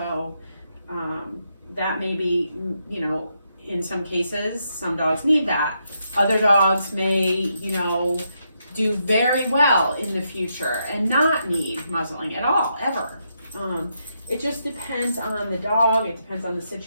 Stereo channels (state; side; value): inverted; both; correlation -0.80